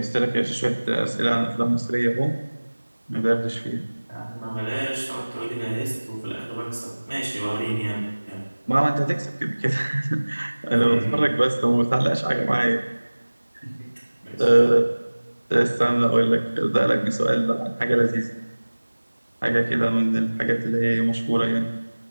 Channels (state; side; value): inverted; both; correlation -1.00